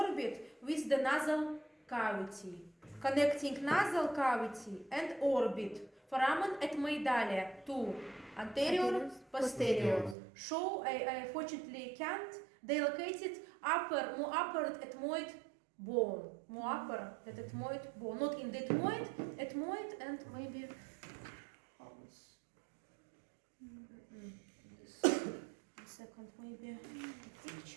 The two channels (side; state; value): left; drops out; at 10.2 s